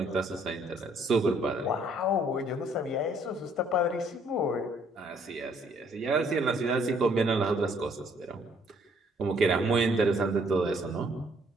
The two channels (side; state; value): both; normal; correlation 0.64